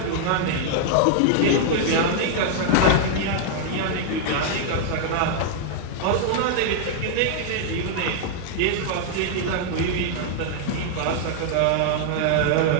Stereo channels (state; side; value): different; both; correlation -0.01